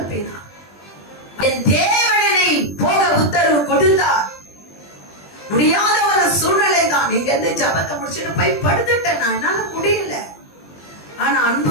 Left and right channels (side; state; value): right; late; 20 ms